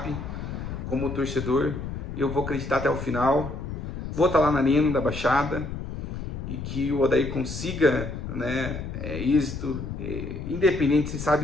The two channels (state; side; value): noise; left; rumble, 6 dB below the sound